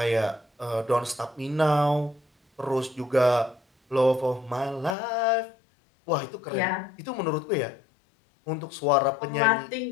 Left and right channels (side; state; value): right; drops out; at 5.0 s